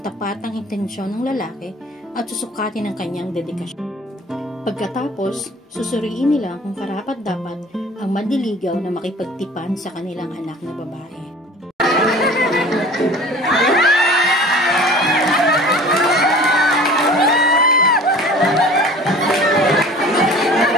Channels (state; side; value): normal; both; correlation 0.45